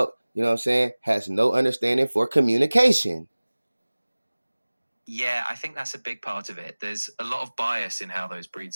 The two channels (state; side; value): inverted; both; correlation -1.00